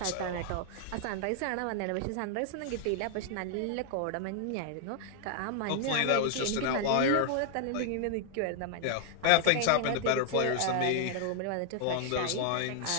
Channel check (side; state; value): both; different; correlation 0.00